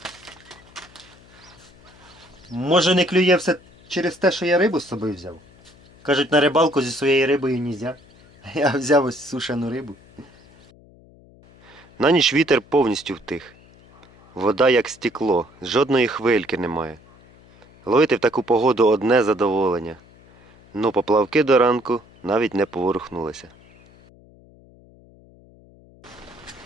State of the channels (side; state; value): left; noise; hum, 26 dB below the sound